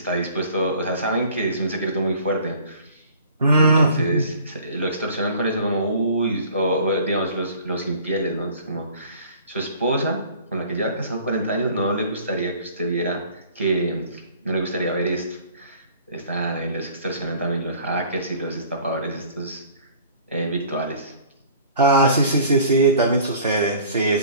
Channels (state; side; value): inverted; both; correlation -0.50